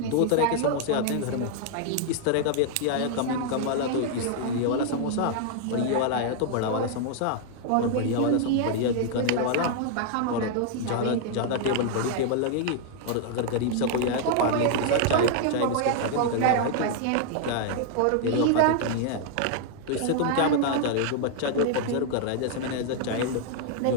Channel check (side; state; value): both; different; correlation 0.00